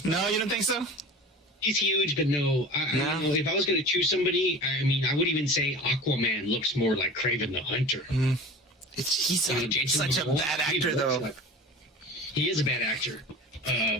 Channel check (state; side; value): normal; both; correlation 0.36